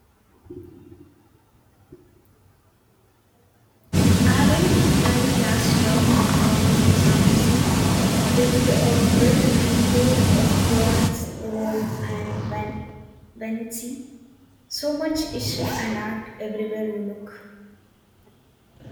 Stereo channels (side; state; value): both; identical; correlation 1.00